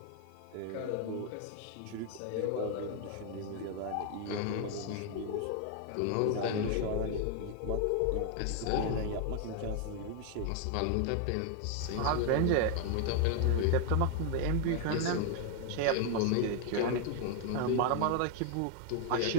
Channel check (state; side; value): different; both; correlation 0.01